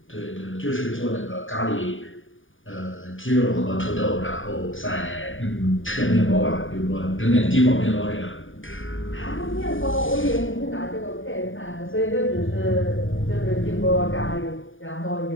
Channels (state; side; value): late; right; 0.57 ms